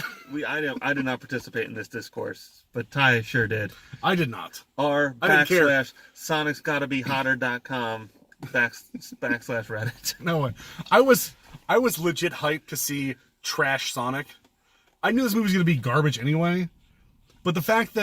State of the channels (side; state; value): both; identical; correlation 1.00